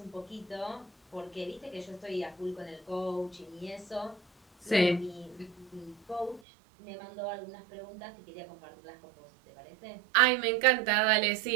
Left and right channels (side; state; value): left; drops out; at 6.4 s